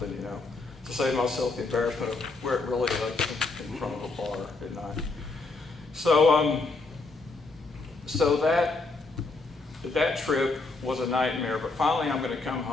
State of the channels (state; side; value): quieter; right; 3.6 dB